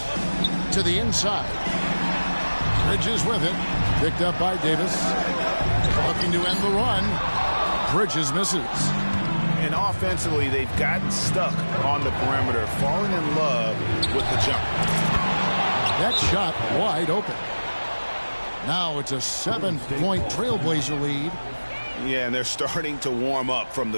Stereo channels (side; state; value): both; inverted; correlation -1.00